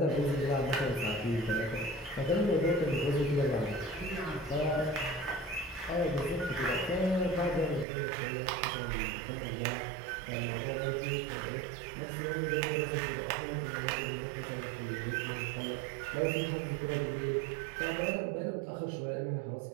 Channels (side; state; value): left; drops out; at 7.9 s